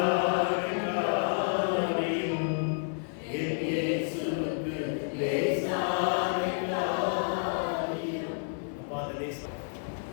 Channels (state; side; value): silent; right; 58 dB below the other